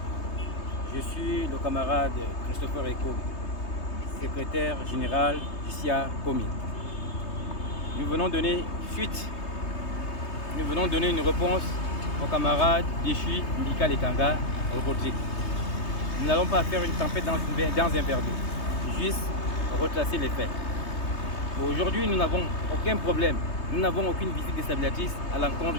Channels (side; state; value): right; late; 3.2 ms